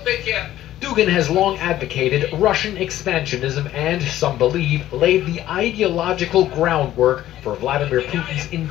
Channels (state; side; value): quieter; right; 13.4 dB